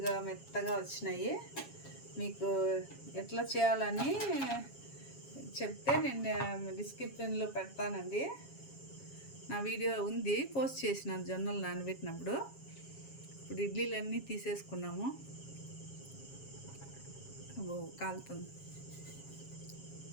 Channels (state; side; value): late; right; 7.3 ms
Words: మెత్తగా వచ్చినాయి. మీకు ఎట్లా చేయాలని చెప్తే నేను డిస్క్రిప్షన్లో పెడతానండి. నా వీడియో ఉంది, పోస్ట్ చేసినాను జొన్నలు నానబెట్టినప్పుడు. ఇప్పుడు ఇడ్లీలన్నీ తీసేసుకున్నాము. అబ్బో కాలుతుంది.